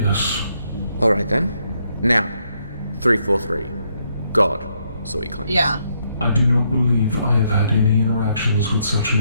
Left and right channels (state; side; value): inverted; both; correlation -0.74